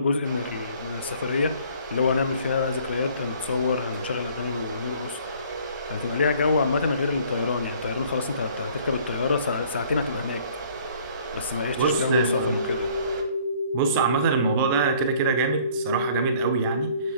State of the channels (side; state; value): both; inverted; correlation -0.56